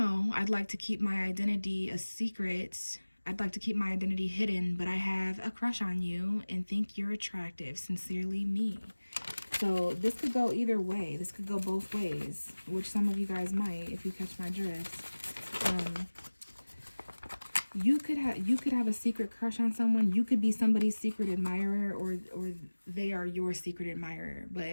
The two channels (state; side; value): inverted; both; correlation -1.00